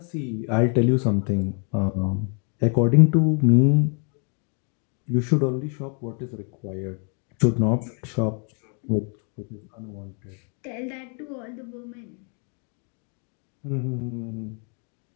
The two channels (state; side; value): quieter; right; 39.4 dB